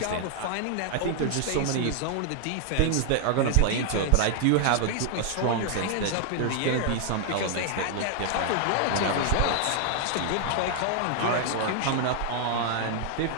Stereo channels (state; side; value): different; both; correlation 0.00